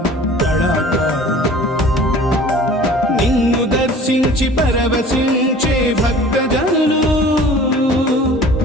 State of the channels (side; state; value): both; normal; correlation 0.46